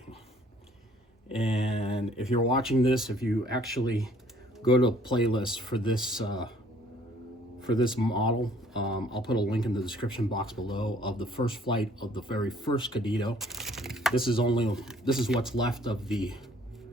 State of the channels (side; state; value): both; normal; correlation 0.59